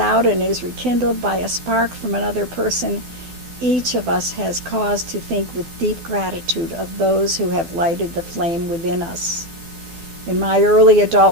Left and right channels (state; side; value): late; left; 12 ms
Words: and is rekindled by a spark from another person. Each of us has cause to think with deep gratitude of those who have lighted the flame within us." In my early